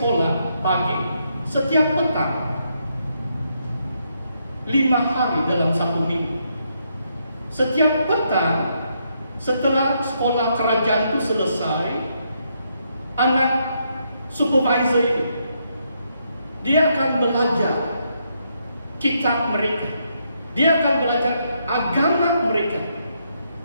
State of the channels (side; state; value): both; inverted; correlation -0.77